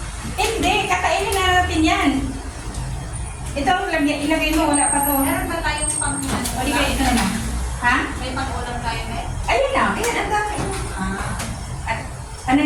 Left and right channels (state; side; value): identical; both; correlation 1.00